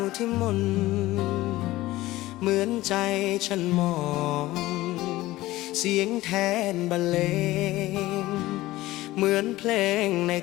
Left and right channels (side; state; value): right; quieter; 17.4 dB